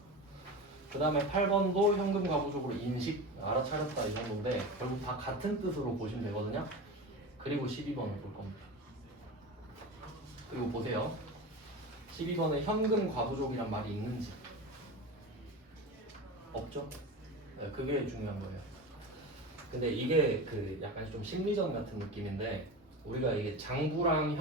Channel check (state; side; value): normal; both; correlation 0.28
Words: 그 다음에 8번도 현금 과부족으로 인식 알아차렸다 이 정도인데 결국 다 같은 뜻으로 보시면 되거든요. 그리고 12번을 볼 겁니다. 그리고 보세요. 12번에 현금 과부족이란 말이 있는지 없죠? 네, 그게 중요한 거예요. 근데 이게 그 약간 좀 심리전 같은 느낌인데 우리가 이게 장부랑